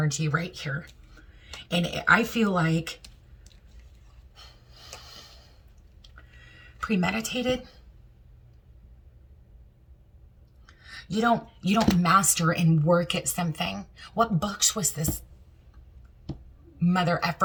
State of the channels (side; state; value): both; identical; correlation 1.00